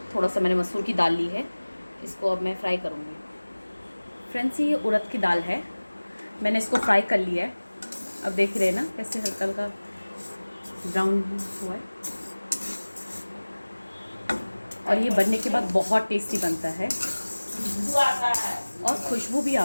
थोड़ा सा मैंने मसूर की दाल ली है। इसको अब मैं फ्राई करूँगी। फ्रेंड्स, ये उड़द की दाल है, मैंने इसको फ्राई कर लिया है। अब देख रहे हैं ना कैसे हल्का हल्का ब्राउन हुआ है। और ये बनने के बाद बहुत टेस्टी बनता है और खुशबू भी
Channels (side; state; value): both; inverted; correlation -1.00